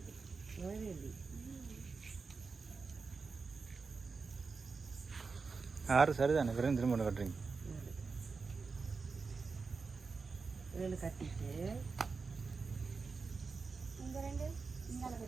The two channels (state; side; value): quieter; left; 4.7 dB